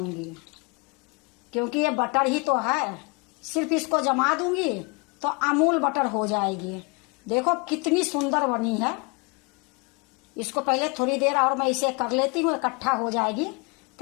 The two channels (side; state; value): right; quieter; 30.7 dB